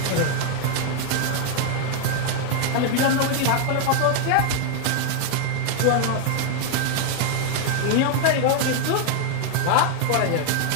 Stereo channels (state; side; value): different; both; correlation 0.00